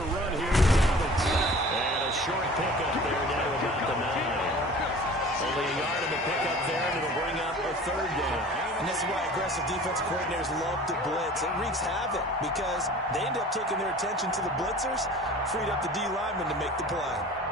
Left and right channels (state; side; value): normal; both; correlation 0.44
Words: run here. And a short pickup there down about the 9. Only a yard in the pickup there, and it'll bring up a 3rd down. And this is why aggressive defensive coordinators love to blitz. It wreaks havoc because they end up taking their attention to the blitzers, freed up the D lineman to make the play.